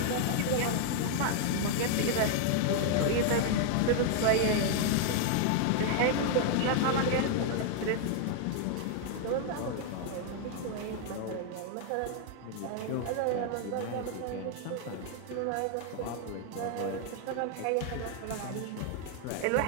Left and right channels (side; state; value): both; different; correlation 0.00